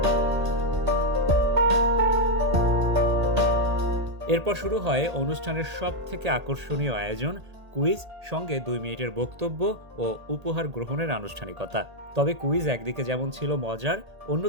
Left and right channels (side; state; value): left; late; 1.8 ms